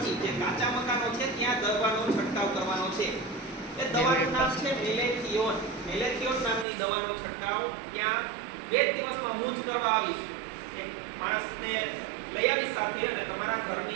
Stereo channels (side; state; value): left; drops out; at 6.7 s